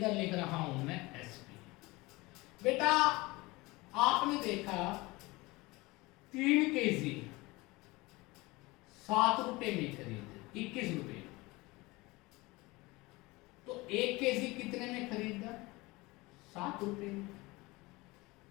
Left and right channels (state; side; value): quieter; right; 22.4 dB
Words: लिख रहा हूं मैं एसपी। बेटा आपने देखा 3 केजी 7 रुपए में खरीदे, 21 रुपए, तो 1 केजी कितने में खरीदा? 7 रुपए में।